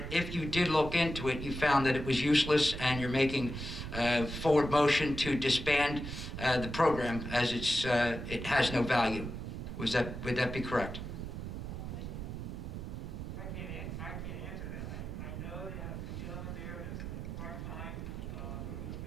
if you did look into it, you found that it was useless and you're making forward motion to disband the program as it has no value. Would that be correct? I can't answer that. I know that the gentleman there is part-time,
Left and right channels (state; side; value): noise; right; rumble, 7 dB below the sound